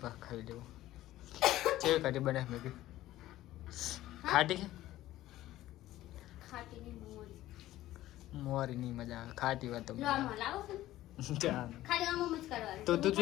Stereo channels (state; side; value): quieter; right; 15.0 dB